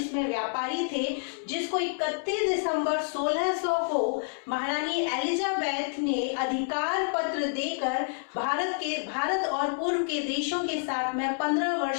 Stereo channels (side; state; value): right; silent; 59 dB below the other